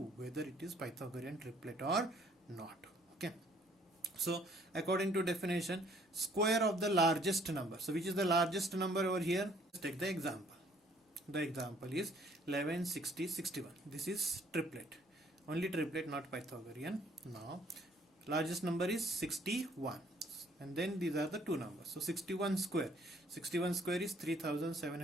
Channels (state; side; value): normal; both; correlation 0.62